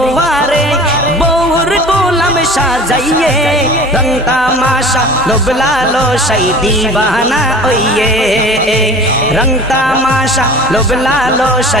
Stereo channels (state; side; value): normal; both; correlation 0.41